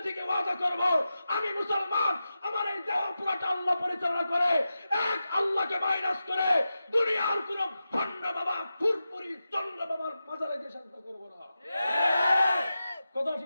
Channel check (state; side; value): inverted; both; correlation -0.92